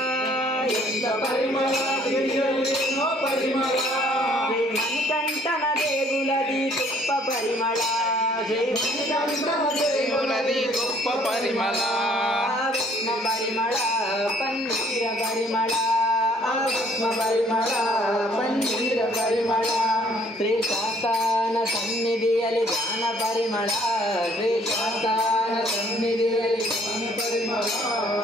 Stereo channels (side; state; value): both; normal; correlation 0.61